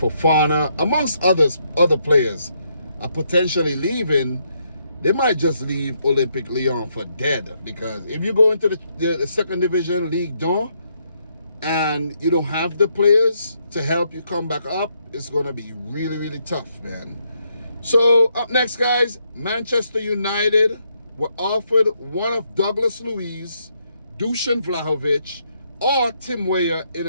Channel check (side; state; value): both; inverted; correlation -0.76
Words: amongst other players, are potentially leaving. They might just leave Olympique Lyon for dead, because if you go into the second division, Ligue 1, and you don't have the players to help you come back up, it's going to be really, really tough, man. So up next, guys, Manchester United were offered one of Douglas Luiz, Dusan Vlahovic, or Tim Weah in